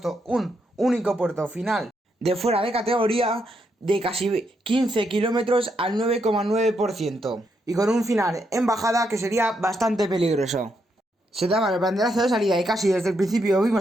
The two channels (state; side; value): normal; both; correlation 0.79